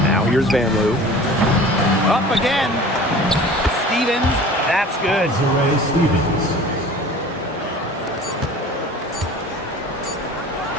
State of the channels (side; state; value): both; normal; correlation 0.42